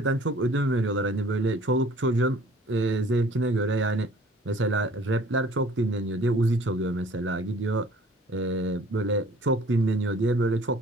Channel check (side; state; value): both; normal; correlation 0.52